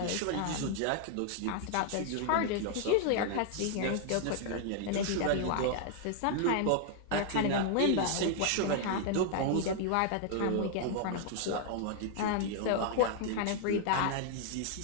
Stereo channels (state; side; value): different; both; correlation 0.00